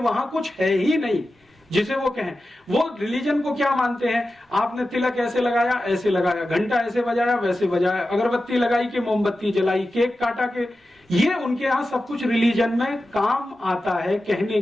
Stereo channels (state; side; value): normal; both; correlation 0.93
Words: वहां कुछ है ही नहीं जिसे वो कहें। वो रिलीजन को क्या मानते हैं? आपने तिलक ऐसे लगाया, ऐसे लगाया, घंटा ऐसे बजाया, वैसे बजाया, अगरबत्ती लगाई कि मोमबत्ती जलाई, केक काटा के, ये उनके यहाँ सब कुछ रिलीजन में काम आता है कहने